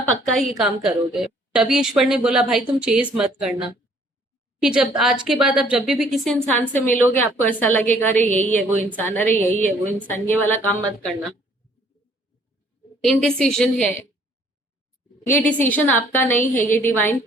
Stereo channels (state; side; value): normal; both; correlation 0.60